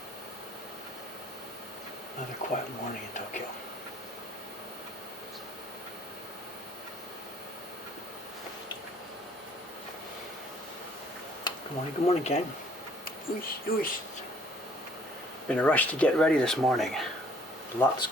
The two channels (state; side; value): normal; both; correlation 0.60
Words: Another quiet morning in Tokyo. Good morning, gang. Been a rush to get ready this morning. Lots